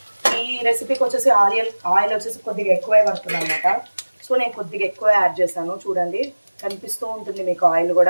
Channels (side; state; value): both; inverted; correlation -1.00